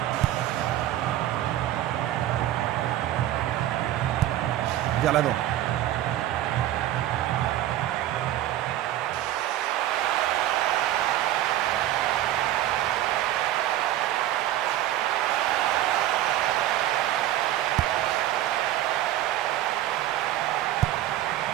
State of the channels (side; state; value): left; quieter; 13.3 dB